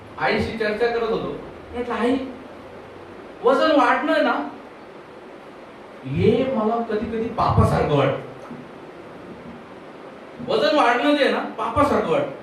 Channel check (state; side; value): identical; both; correlation 1.00